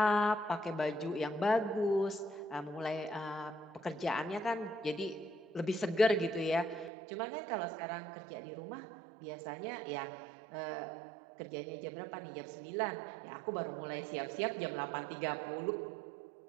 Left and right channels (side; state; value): left; drops out; at 6.9 s